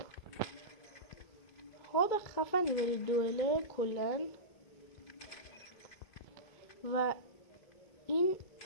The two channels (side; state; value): right; late; 2.3 ms